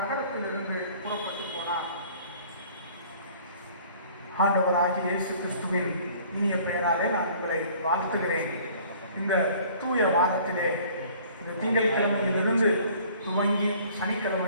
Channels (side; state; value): both; inverted; correlation -0.53